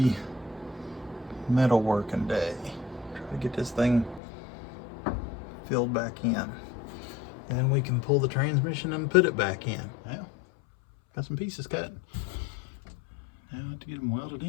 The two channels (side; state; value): right; drops out; at 4.2 s